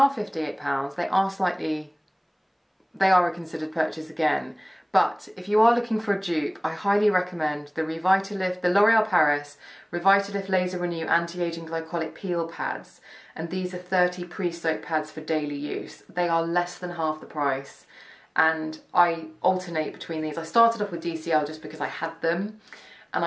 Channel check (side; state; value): both; identical; correlation 1.00